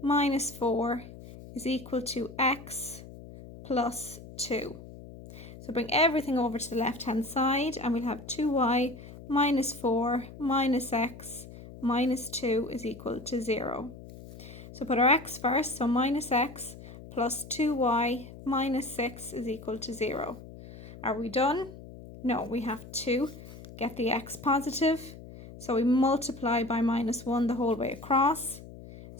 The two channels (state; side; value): noise; left; hum, 16 dB below the sound